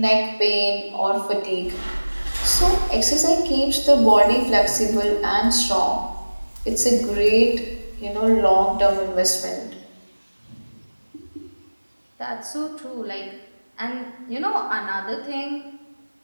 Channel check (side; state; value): both; inverted; correlation -1.00